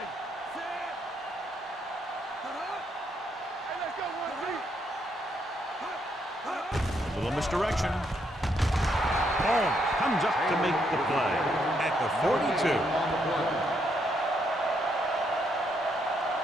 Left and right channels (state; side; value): normal; both; correlation 0.75